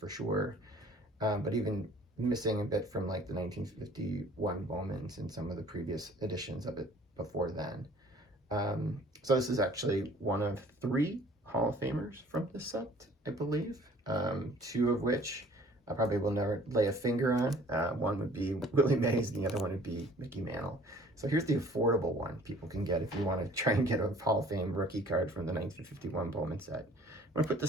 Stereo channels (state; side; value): normal; both; correlation 0.52